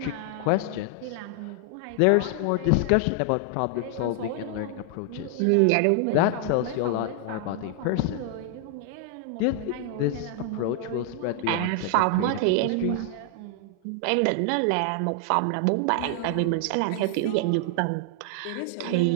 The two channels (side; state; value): both; different; correlation 0.00